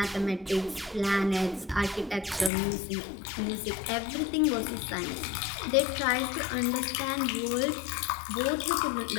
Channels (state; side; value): drops out; right; at 2.5 s